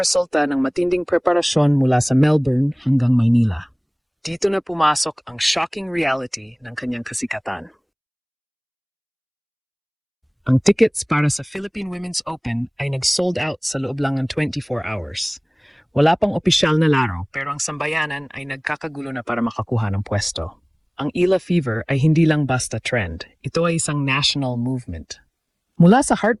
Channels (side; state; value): both; identical; correlation 1.00